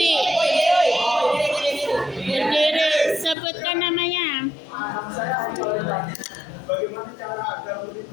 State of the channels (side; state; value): right; drops out; at 3.4 s